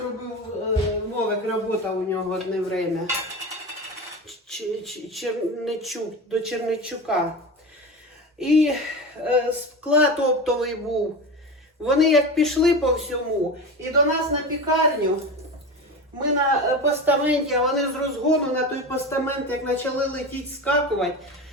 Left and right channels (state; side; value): normal; both; correlation 0.26